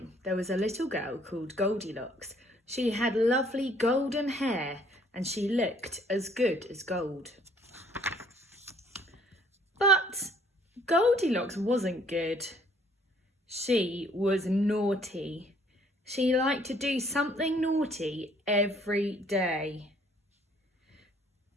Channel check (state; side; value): normal; both; correlation 0.61